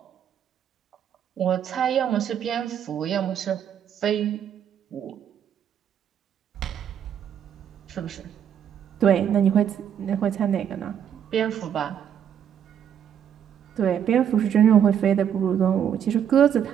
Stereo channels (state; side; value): quieter; left; 8.9 dB